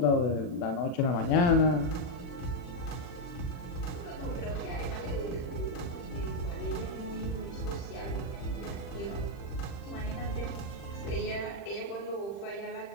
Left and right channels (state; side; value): late; right; 40 ms